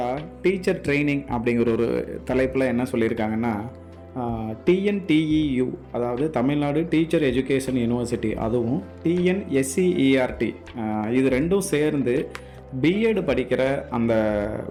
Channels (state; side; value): identical; both; correlation 1.00